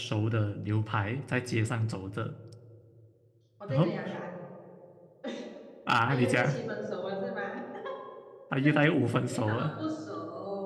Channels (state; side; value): identical; both; correlation 1.00